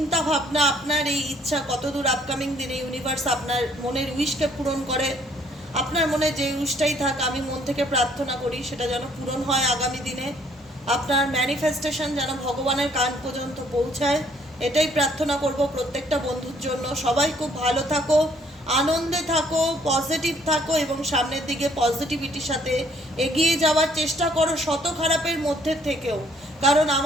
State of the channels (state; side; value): normal; both; correlation 0.63